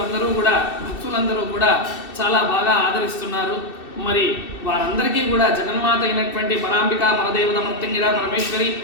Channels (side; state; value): right; late; 2.6 ms